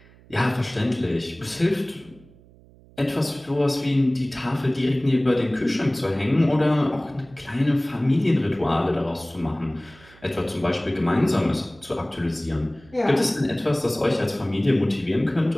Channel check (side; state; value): right; noise; hum, 26 dB below the sound